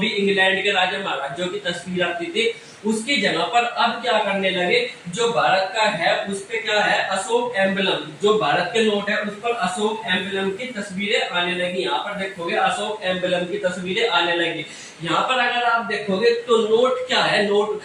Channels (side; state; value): both; identical; correlation 1.00